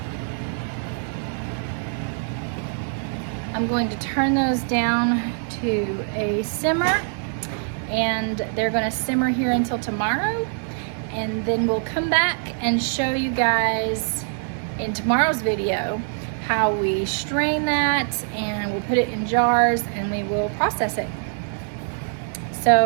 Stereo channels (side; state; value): left; silent; digital silence